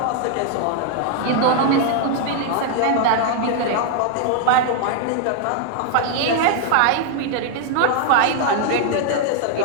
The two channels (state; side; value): different; both; correlation 0.00